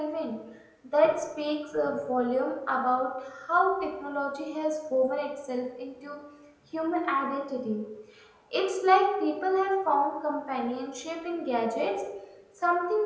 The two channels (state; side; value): identical; both; correlation 1.00